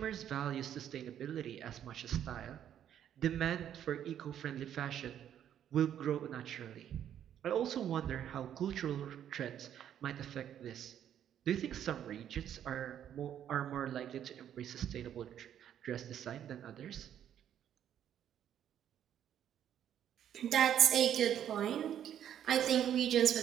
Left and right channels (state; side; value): quieter; left; 10.1 dB